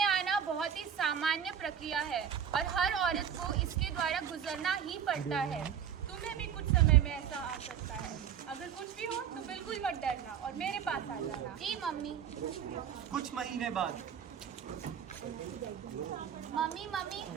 आना बहुत ही सामान्य प्रक्रिया है और हर औरत को इसके द्वारा गुजरना ही पड़ता है। तुम्हें भी कुछ समय में ऐसा आ सकता है। अगर कुछ भी हो तो बिल्कुल मत डरना और मेरे पास आ जाना। जी मम्मी। कुछ महीने बाद। मम्मी मम्मी,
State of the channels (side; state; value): left; quieter; 8.5 dB